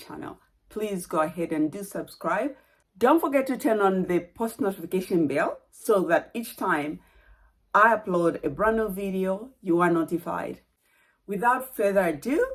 please go ahead and do subscribe. Don't forget to turn on the post notification bell so that each time I upload a brand new video, you are notified. Without further ado,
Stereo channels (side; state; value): both; identical; correlation 1.00